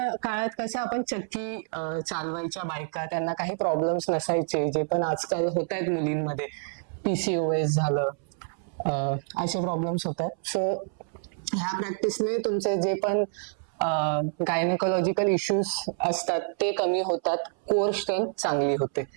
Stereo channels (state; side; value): silent; left; 60 dB below the other